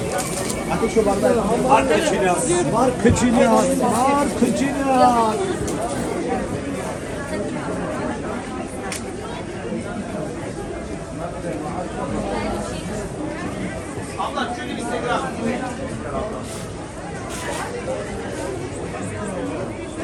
Ateş şu bardağı. Var kıçını. Var kıçını. Var kıçını.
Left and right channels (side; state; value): both; identical; correlation 1.00